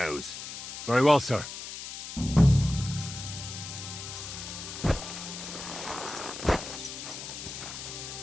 Very well, sir.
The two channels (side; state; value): left; noise; hiss, 9 dB below the sound